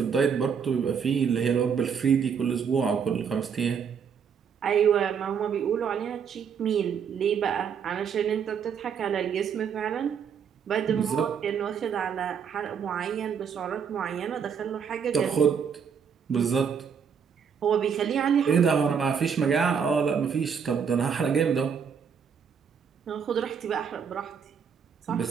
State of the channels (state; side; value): quieter; left; 7.0 dB